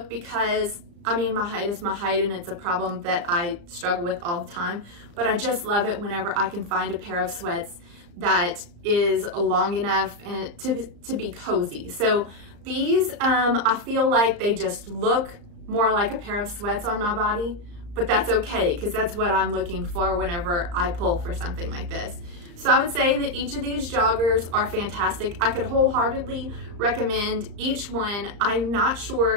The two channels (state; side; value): late; left; 35 ms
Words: because, I mean, my height is my height and it's a problem that I struggle with all the time, but I just love it whenever I can find a pair of sweats that is long enough and to be cozy. So these, I feel like they just look more like a pair of sweats on my body, but that's okay because that's what I'm looking for whenever I pull for something like this. So I would say that each of these joggers are fantastic. I could wholeheartedly recommend each one. I'm not